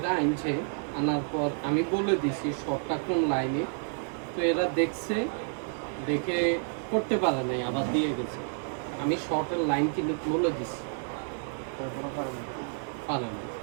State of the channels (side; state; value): left; silent; 58 dB below the other